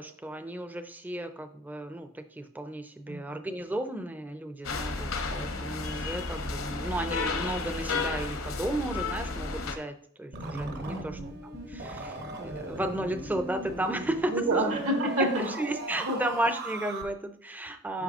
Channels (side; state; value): both; normal; correlation 0.47